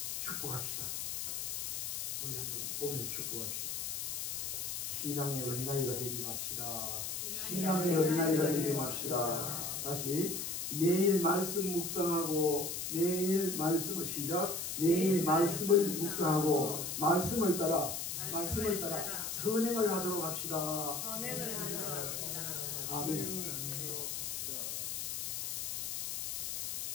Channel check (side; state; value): left; noise; hiss, 3 dB below the sound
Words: 축복합시다. 우리 한번 보면서 축복합시다. 신앙의 어린아이가 되지 맙시다. 신앙의 어린아이가 되지 맙시다. 다시 매일 말씀 묵상하고 매일 말씀을 시작. 매일 말씀을 묵상하고 말씀을 따라 선행을 하도록 합시다. 선행을 하도록 합시다. 아멘.